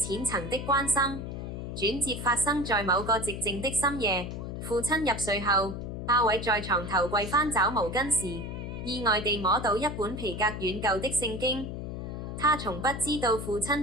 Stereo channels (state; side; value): noise; left; hum, 6 dB below the sound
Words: 層的關心，轉折發生在某個寂靜的深夜。父親入睡後，阿偉在床頭櫃翻找毛巾時，意外地摸到一本皮革軟舊的聖經。他從不知道父親